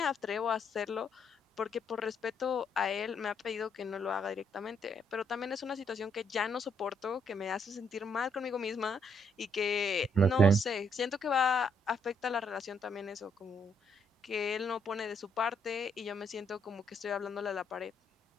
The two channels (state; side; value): normal; both; correlation 0.72